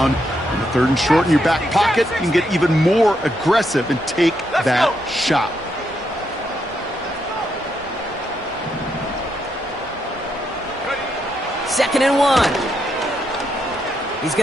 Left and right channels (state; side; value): normal; both; correlation 0.79